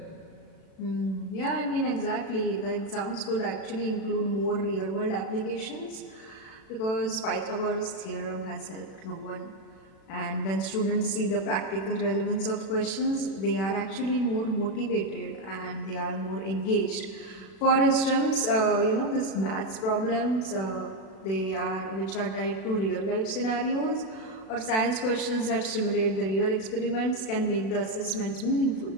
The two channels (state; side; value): late; right; 36 ms